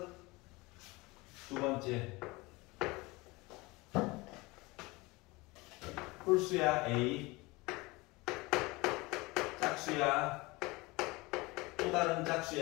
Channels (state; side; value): quieter; right; 23.5 dB